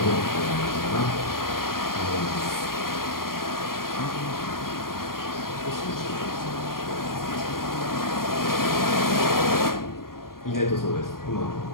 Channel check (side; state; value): right; late; 0.91 ms